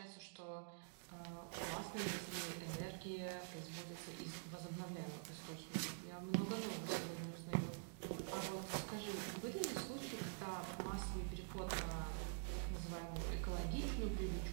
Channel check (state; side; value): silent; left; digital silence